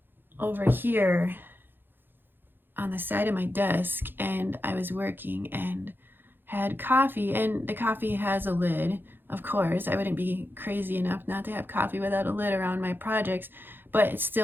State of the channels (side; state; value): left; late; 0.098 ms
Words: over here on the side of my desk, and I was working and had coffee, and the coffee has a lid. Of course, I wouldn't be crazy enough not to have coffee without a lid around my projects, but it